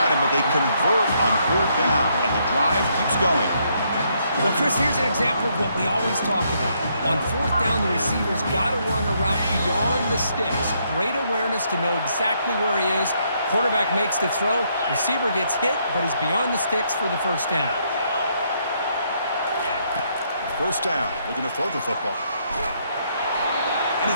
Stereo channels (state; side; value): inverted; both; correlation -0.73